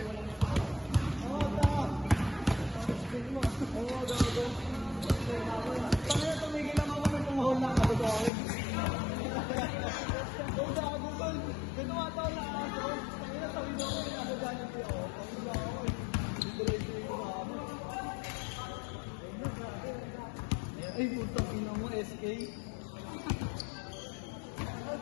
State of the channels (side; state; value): right; drops out; at 8.3 s